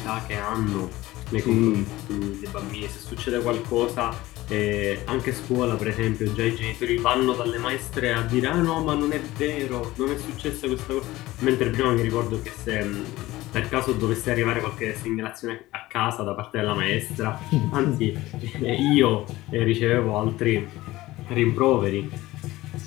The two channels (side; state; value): right; quieter; 17.7 dB